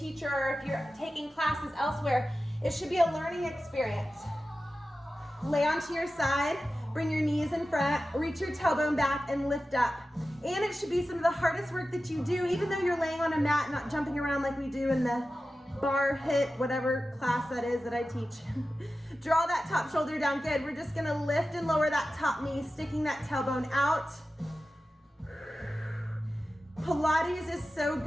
or if you're taking classes elsewhere, it should be a learning experience. Lay onto your side, bring your knees in front, reach your tailbone back and lift up. And it should be some of the hardest work that you do, even though you're laying on a mat, not jumping around like we do in the bar hit, whatever class that is that I teach. Draw that top shoulder down. Good. We're just gonna lift and lower that top knee, sticking that tailbone out. Pilates is so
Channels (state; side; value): normal; both; correlation 0.94